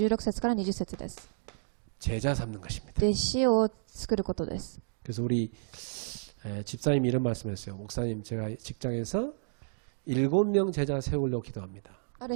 節から20節です。 제자 삼는 것입니다. 弟子を作ることです。 그래서 우리 집사님이 이런 말씀했어요. 목사님, 제가 직장에서 7명 제자 세우려고 기도합니다. あ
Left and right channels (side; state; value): left; silent; digital silence